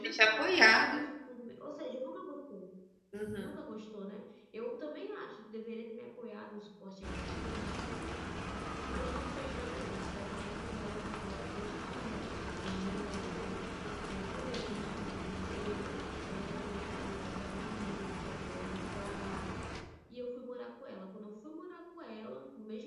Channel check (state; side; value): identical; both; correlation 1.00